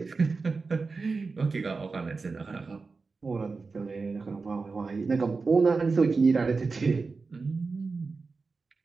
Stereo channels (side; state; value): left; quieter; 4.3 dB